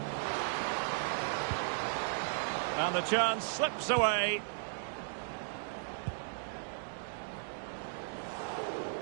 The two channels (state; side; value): silent; left; digital silence